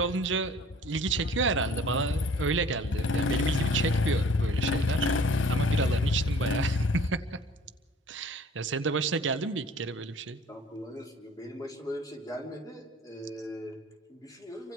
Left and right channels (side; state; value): both; normal; correlation 0.50